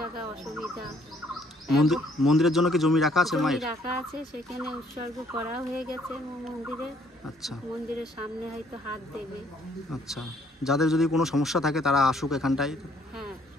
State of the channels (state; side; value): normal; both; correlation 0.64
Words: অসুবিধা। মন্দিরের জন্য কি জমি রাখা আছে জমি মায়ের? রাখা আছে, সেখানে উৎসর্গ করা হয়ে গেছে মন্দিরে। আচ্ছা, মন্দিরের সামনে হয়তো হাত দেবে। আচ্ছা, যাদের যদি কোনো সমস্যা থাকে তারা আসুক এখানটায়। হ্যাঁ,